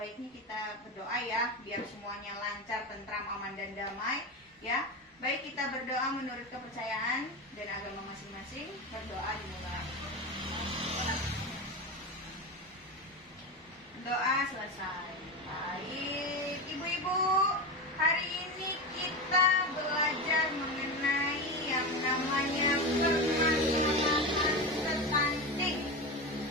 kita berdoa ya, biar semuanya lancar, tentram, aman dan damai ya. Baik, kita berdoa menurut kepercayaan dan agama masing-masing. Berdoa dimulai. Doa selesai. Baik, Ibu-ibu, hari ini kita belajar mengenai yang namanya permasalahan stunting.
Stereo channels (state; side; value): normal; both; correlation 0.20